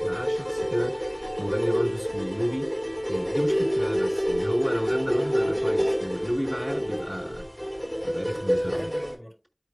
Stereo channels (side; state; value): both; identical; correlation 1.00